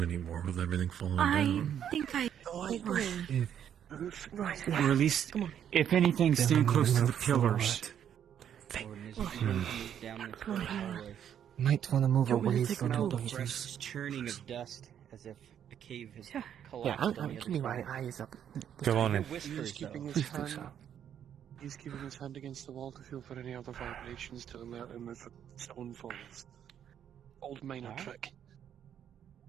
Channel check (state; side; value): quieter; left; 9.4 dB